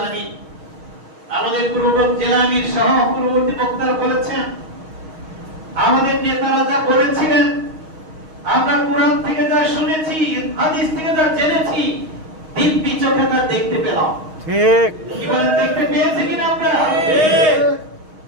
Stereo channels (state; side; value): late; left; 6.4 ms